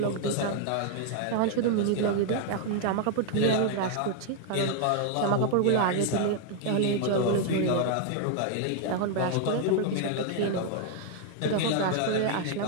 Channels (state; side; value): different; both; correlation 0.00